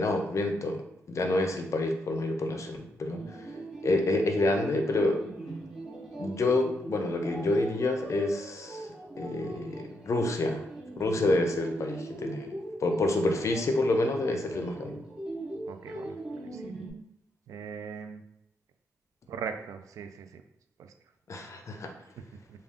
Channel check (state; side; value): normal; both; correlation 0.79